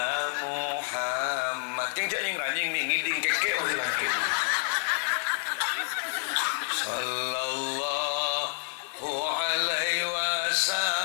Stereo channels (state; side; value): silent; right; digital silence